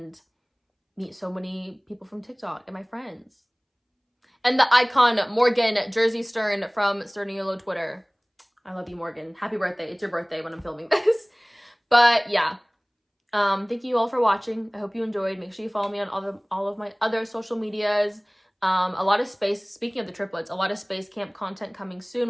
meet so many people from TikTok and my friends. And the icon Morgan Jersey Stern from Sturniolo Twitter. I love you, Morgan. Happy birthday. It's your birthday when I'm filming this. But yeah, thank you all for watching. I hope you enjoyed. Make sure you follow me on all of my other social medias. A lot of space, speaking of the triplets, a lot of space camp content coming soon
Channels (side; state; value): both; identical; correlation 1.00